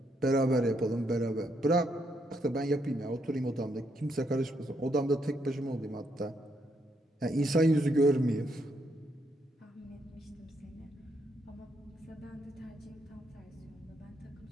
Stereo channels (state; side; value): normal; both; correlation 0.76